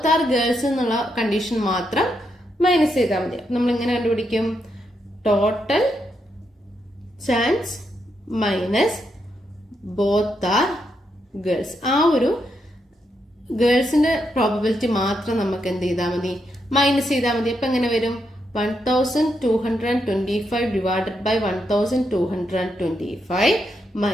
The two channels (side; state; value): both; normal; correlation 0.81